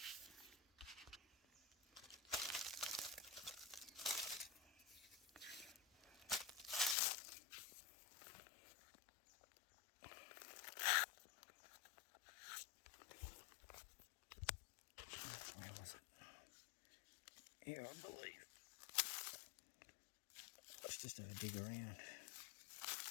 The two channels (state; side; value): drops out; right; at 7.0 s